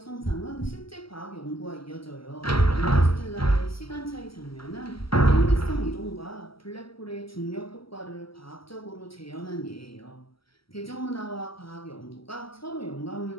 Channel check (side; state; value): right; late; 0.75 ms